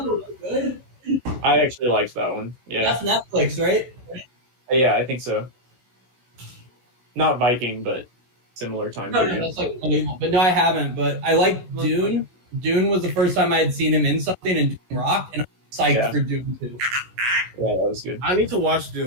good. I actually liked that one. Yeah. That's Netflix, right? Yeah, I think so. Not Viking, but similar time period. No, that's unbelievable. But no, I haven't. But I like Dune. Dune was the first time I had seen him in something, and Dune rocked, and I'm psyched for Dune too. Yeah, that was good. I need to watch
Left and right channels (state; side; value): late; left; 16 ms